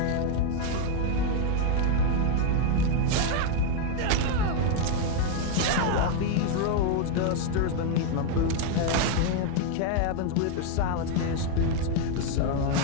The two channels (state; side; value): different; both; correlation 0.01